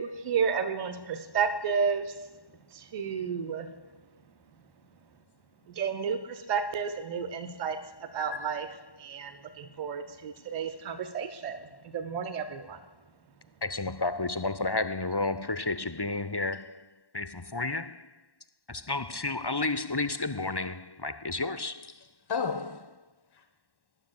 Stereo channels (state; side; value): late; right; 1.1 ms